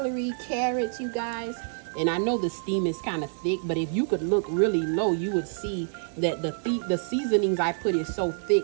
carrots, you guys. And I know the steam is kind of thick, but if you could look really low, you would see that the seasonings I put is so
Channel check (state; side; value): silent; left; digital silence